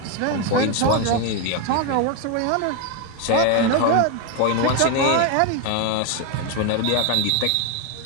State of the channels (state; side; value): different; both; correlation 0.02